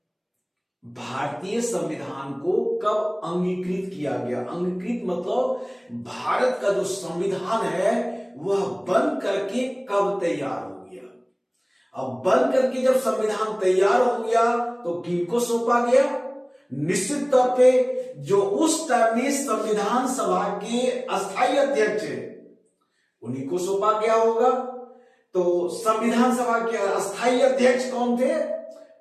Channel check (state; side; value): identical; both; correlation 1.00